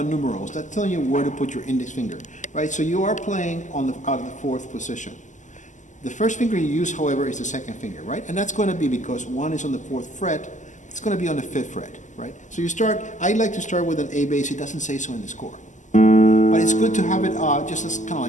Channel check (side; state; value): right; late; 0.36 ms